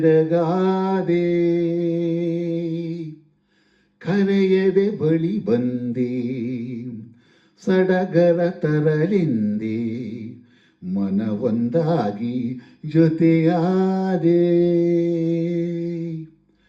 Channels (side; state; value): both; identical; correlation 1.00